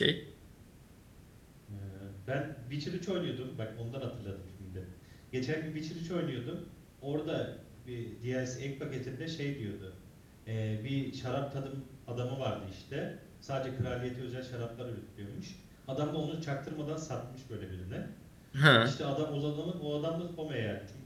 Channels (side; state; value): both; identical; correlation 1.00